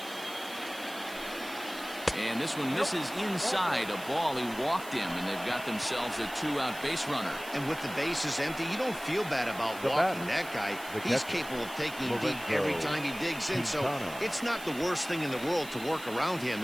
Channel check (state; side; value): noise; right; hiss, 15 dB below the sound